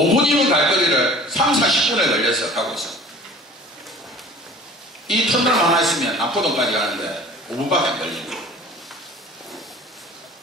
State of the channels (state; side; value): normal; both; correlation 0.44